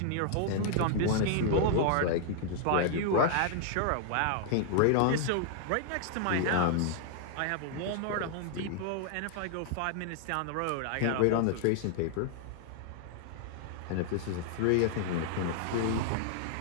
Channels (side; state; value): both; different; correlation 0.00